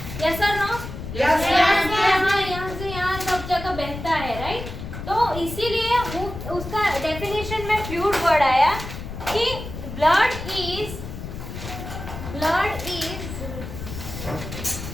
यस और नो? यहाँ से यहाँ सब जगह बहता है, राइट? तो इसीलिए वो उसका डेफिनेशन में फ्लूइड वर्ड आया कि blood is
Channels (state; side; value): noise; left; rumble, 9 dB below the sound